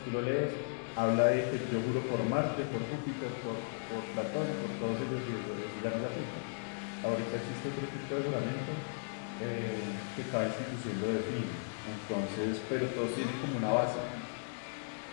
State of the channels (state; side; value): silent; right; digital silence